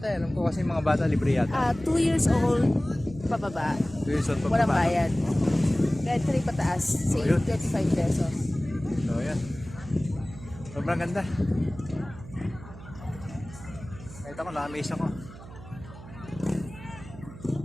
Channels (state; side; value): noise; right; hum, 16 dB below the sound